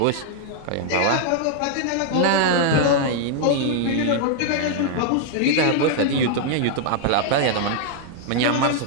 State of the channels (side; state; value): both; different; correlation -0.01